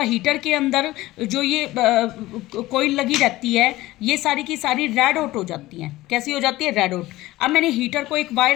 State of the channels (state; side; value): quieter; right; 17.6 dB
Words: हीटर के अंदर जो ये कोयल लगी रहती है, ये सारी की सारी रेड हॉट हो जाती हैं। कैसी हो जाती है? Red hot. अब मैंने हीटर को एक